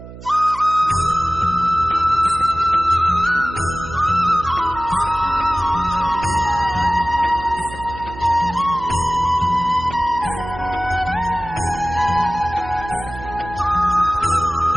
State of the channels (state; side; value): noise; right; hum, 15 dB below the sound